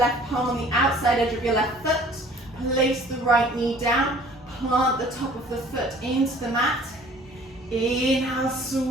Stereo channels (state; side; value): normal; both; correlation 0.52